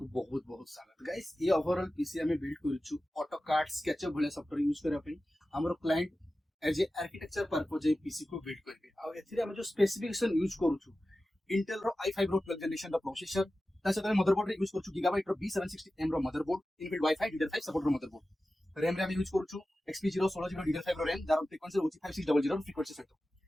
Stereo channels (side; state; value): both; normal; correlation 0.94